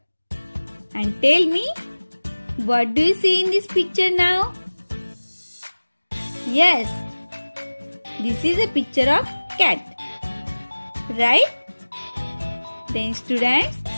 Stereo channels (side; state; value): both; inverted; correlation -1.00